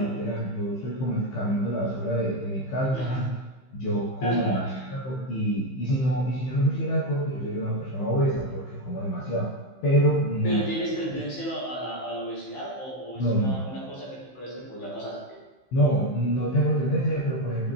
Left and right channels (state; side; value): late; right; 15 ms